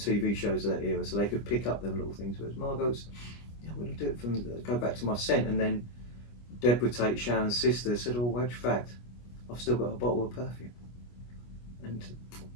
shows of that era, so they could pick up them little things. Whereas Margot's, I'm going to do it from go back to my scent. And then Deborah Tate, Sharon's sister, said, "Oh, wedge fact, I've still got a bottle of perfume." And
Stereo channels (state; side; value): late; right; 25 ms